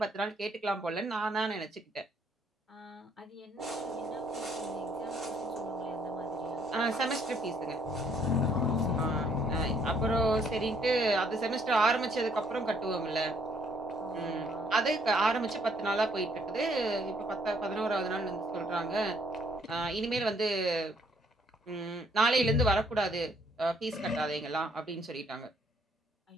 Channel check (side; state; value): both; normal; correlation 0.66